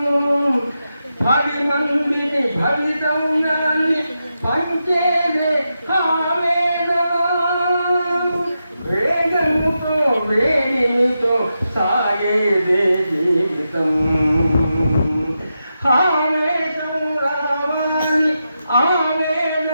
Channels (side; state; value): both; inverted; correlation -0.87